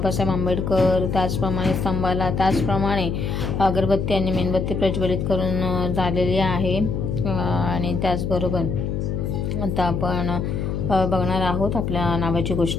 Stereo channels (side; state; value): left; noise; hum, 2 dB below the sound